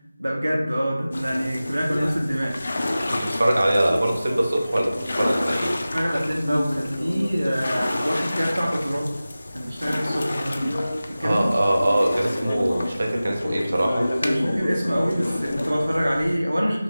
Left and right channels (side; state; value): both; inverted; correlation -0.96